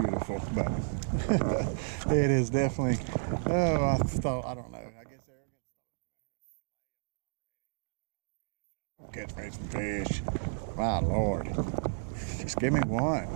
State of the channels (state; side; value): silent; left; digital silence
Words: but it is definitely, oh, I don't know, I guess catch me some fish. My Lord, just give me one,